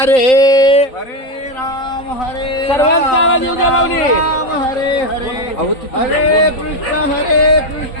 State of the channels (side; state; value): right; late; 3.8 ms